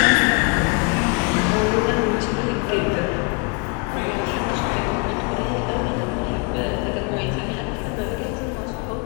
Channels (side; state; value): right; quieter; 31.7 dB